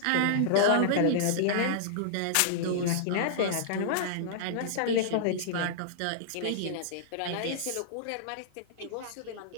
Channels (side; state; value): both; different; correlation -0.02